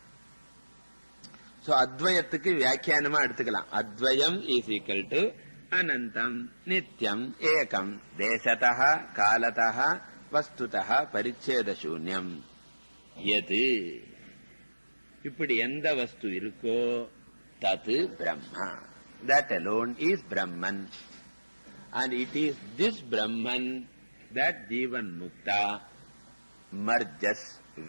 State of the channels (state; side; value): inverted; both; correlation -1.00